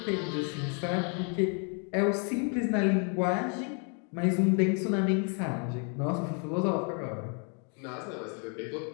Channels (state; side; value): quieter; right; 39.2 dB